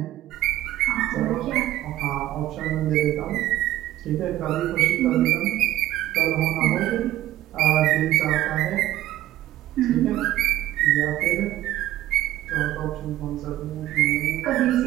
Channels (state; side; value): quieter; left; 14.2 dB